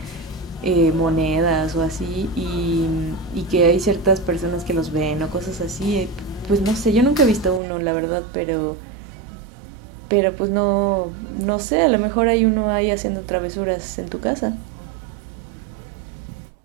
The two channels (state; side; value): drops out; left; at 7.6 s